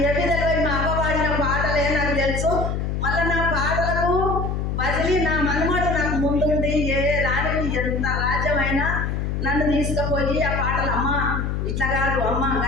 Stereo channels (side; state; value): left; noise; hum, 1 dB below the sound